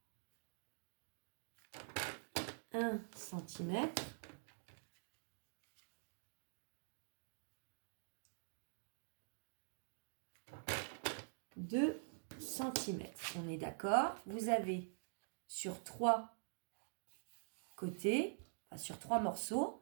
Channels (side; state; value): left; silent; digital silence